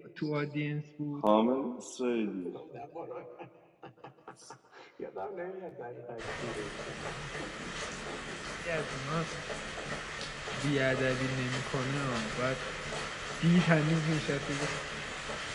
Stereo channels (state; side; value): identical; both; correlation 1.00